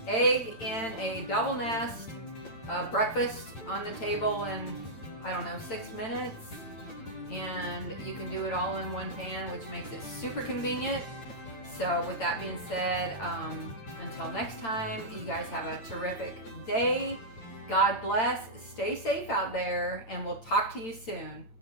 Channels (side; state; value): right; late; 8.9 ms